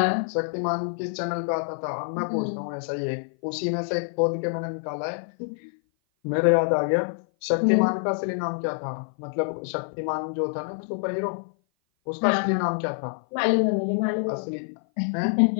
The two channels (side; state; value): right; silent; 56 dB below the other